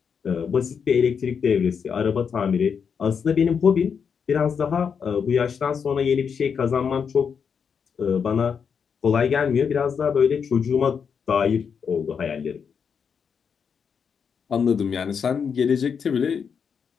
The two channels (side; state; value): right; quieter; 6.6 dB